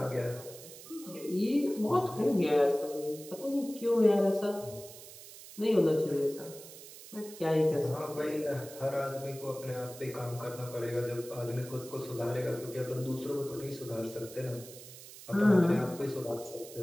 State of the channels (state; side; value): noise; right; hiss, 16 dB below the sound